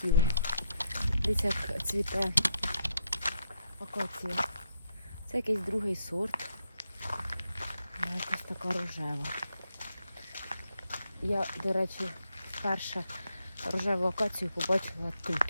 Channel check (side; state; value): both; inverted; correlation -0.77